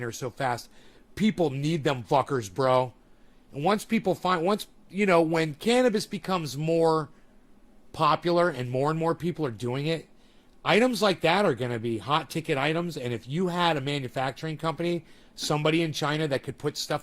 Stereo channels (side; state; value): both; identical; correlation 1.00